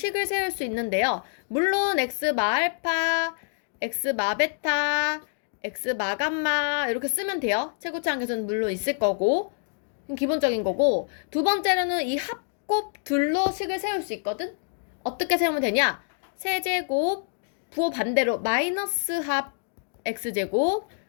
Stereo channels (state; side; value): silent; right; digital silence